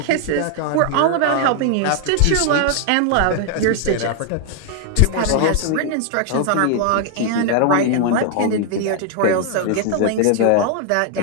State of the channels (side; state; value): both; different; correlation 0.00